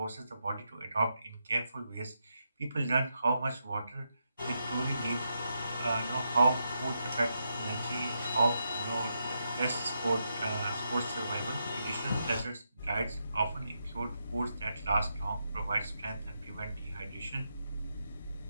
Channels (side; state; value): both; inverted; correlation -0.83